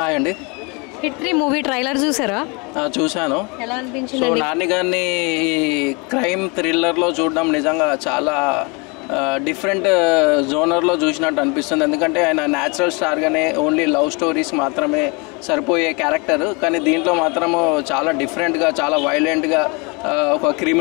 అండి. Hit 3 movie trailer చూసారా? చూశాను. ఎలా అనిపించింది? సో నాని గారిని ఈ క్రైమ్ థ్రిల్లర్లో చూడడం నిజంగా చాలా డిఫరెంట్ జోనర్లో చూసినట్టు అనిపిస్తుంది. ఎందుకంటే ఆయన న్యాచురల్ స్టార్గానే ఓన్లీ లవ్ స్టోరీస్ మాత్రమే సరిపోయే క్యారెక్టర్, కానీ దీంట్లో మాత్రము చాలా డిఫరెంట్గా, చాలా వైలెంట్గా ఒక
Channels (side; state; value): right; quieter; 30.2 dB